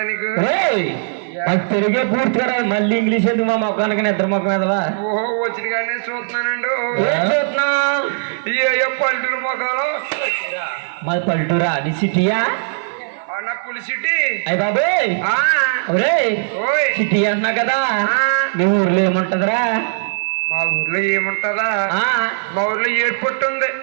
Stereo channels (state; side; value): silent; left; digital silence